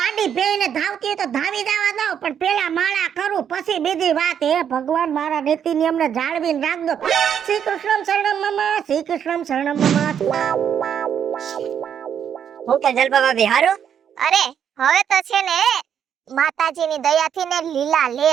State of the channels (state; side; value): quieter; left; 8.6 dB